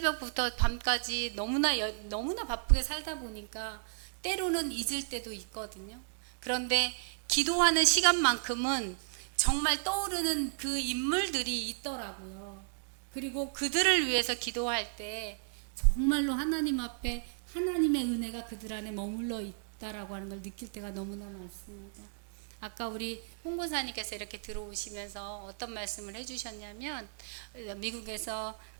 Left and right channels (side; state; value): left; silent; digital silence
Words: 밤까지 너무나 바쁘게 살다 보니까 때로는 잊을 때도 있거든요. 그런데 기도하는 시간만큼은 정말 떠오르는 그 인물들이 있더라고요. 그리고 그들을 위해서 기도할 때 정말로 하나님 앞에 하나님의 은혜가 그들 안에 머물러 있다라고 하는 걸 느낄 때가 너무나 많습니다. 아까 우리 홍보사님께서 이렇게 들어오시면서 어떤 말씀을 해주셨냐면 미국에서